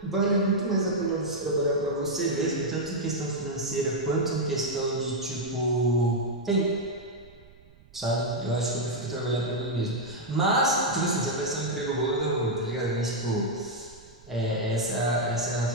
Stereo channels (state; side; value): noise; right; rumble, 24 dB below the sound